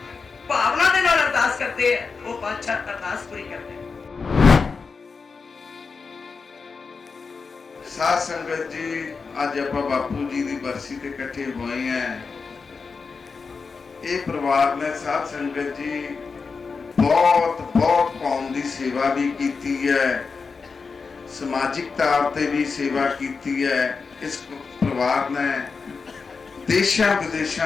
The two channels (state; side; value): quieter; right; 4.9 dB